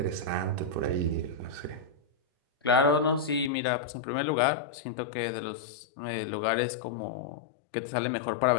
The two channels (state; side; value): drops out; right; at 3.5 s